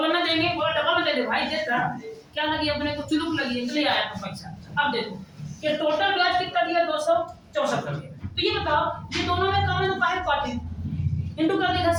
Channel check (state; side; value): identical; both; correlation 1.00